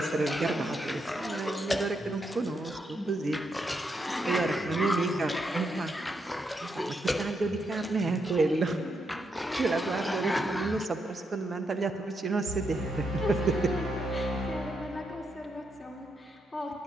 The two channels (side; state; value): both; normal; correlation 0.80